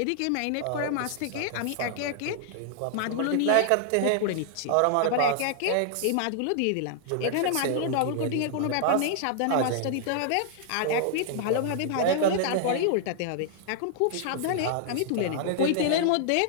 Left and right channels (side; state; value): both; different; correlation -0.01